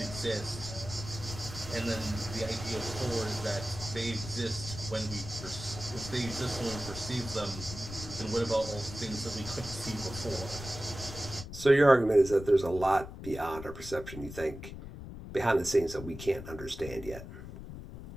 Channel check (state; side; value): noise; left; rumble, 11 dB below the sound